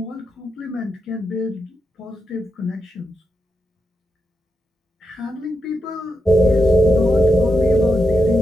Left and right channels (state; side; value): normal; both; correlation 0.86